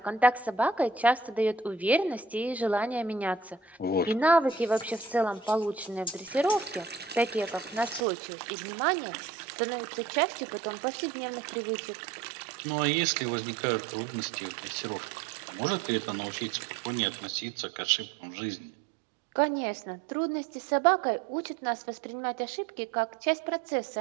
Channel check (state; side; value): drops out; left; at 8.1 s